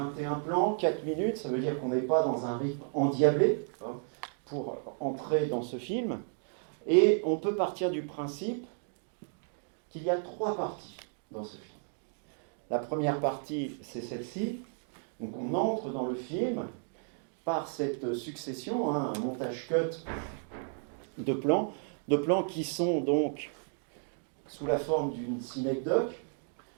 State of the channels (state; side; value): silent; left; 56 dB below the other